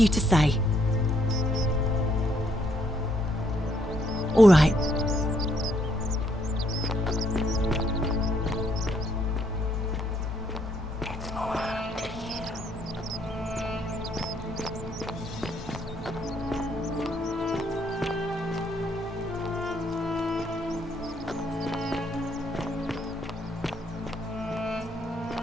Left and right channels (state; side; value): normal; both; correlation 0.71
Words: to say. All right.